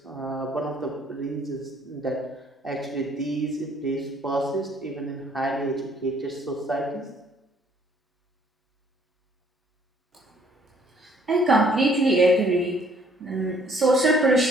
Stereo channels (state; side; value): normal; both; correlation 0.61